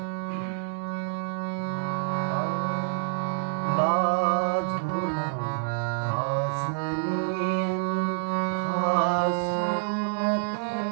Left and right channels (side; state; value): left; silent; 60 dB below the other